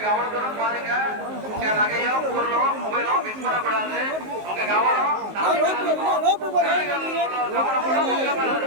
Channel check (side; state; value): left; late; 19 ms